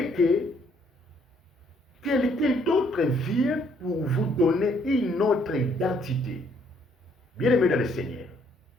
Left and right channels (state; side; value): normal; both; correlation 0.67